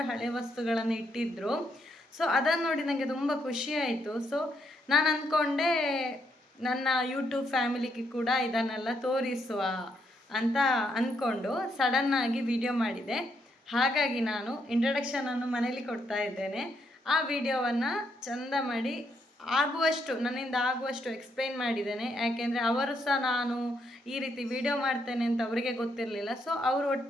ಹಳೆ ವಸ್ತುಗಳನ್ನು ಇಟ್ಟಿದ್ದರು. ಸೊ ಅದನ್ನು ನೋಡಿ ನನಗೆ ತುಂಬ ಖುಷಿ ಆಯಿತು. ಸೊ ನಾನು ಅಂದ್ಕೊಂಡೆ ನನ್ನ ಯೂಟ್ಯೂಬ್ ಫ್ಯಾಮಿಲಿಗೆ ಕೂಡ ಇದನ್ನೆಲ್ಲ ತೋರಿಸುವ ಅಂತ ಅಂದ್ಕೊಂಡು ಸಡನ್ನಾಗಿ ವಿಡಿಯೋ ಮಾಡಿದೆ. ಹಾಗಾಗಿ ನಾನು ಇಂಟ್ರಡಕ್ಷನನ್ನು ಮನೇಲಿ ಕೊಡ್ತಾ ಇದ್ದೇನೆ. ಆ ವಿಡಿಯೋವನ್ನು ಚಂದ ಮಾಡಿ ನನ್ನಿಂದ ಆಗುವಷ್ಟು ಎಕ್ಸ್ಪ್ಲೈನ್ ಮಾಡಿದ್ದೇನೆ. ಯಾಕೆಂದರೆ ಅವರು ಸಹ ನಾನು ಈ ರೀತಿ ವಿಡಿಯೋ ಮಾಡ್ತೇನೆ ಅಂತ ಅವರಿಗೆ ಗೊತ್ತಿರಲಿಲ್ಲ. ಸೊ ಅವರು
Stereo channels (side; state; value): both; normal; correlation 0.76